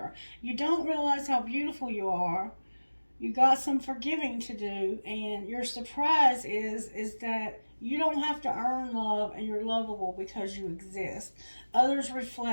You don't realize how beautiful you are. You got some forgiving to do, and your surprise is that you don't have to earn love, and you're lovable because you exist. Others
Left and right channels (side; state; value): both; inverted; correlation -1.00